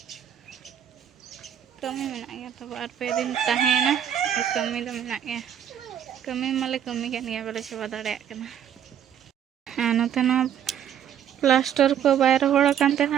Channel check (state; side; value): quieter; left; 9.4 dB